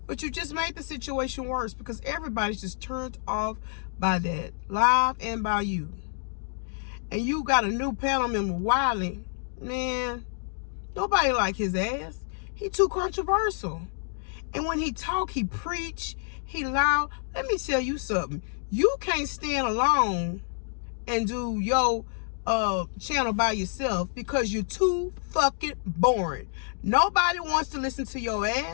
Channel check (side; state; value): right; silent; 56 dB below the other